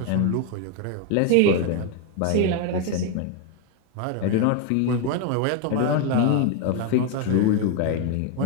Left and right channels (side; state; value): both; different; correlation 0.01